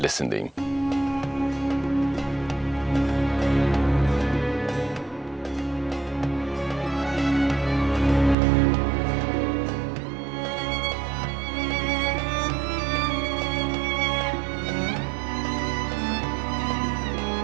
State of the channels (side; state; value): left; drops out; at 8.3 s